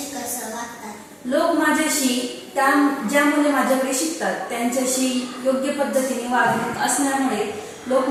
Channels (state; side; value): identical; both; correlation 1.00